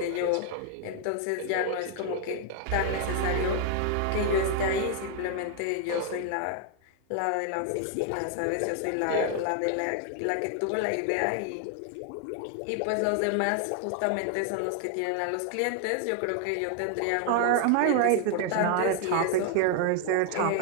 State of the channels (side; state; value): both; different; correlation 0.00